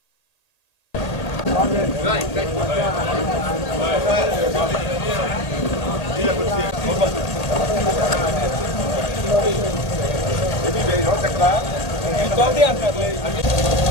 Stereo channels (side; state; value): right; late; 1.9 ms